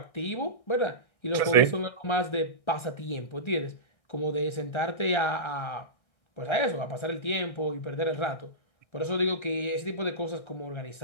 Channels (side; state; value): right; late; 1.6 ms